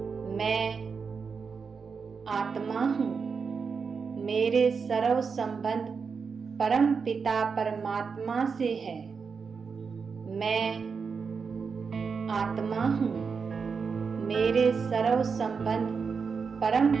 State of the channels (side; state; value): left; quieter; 5.5 dB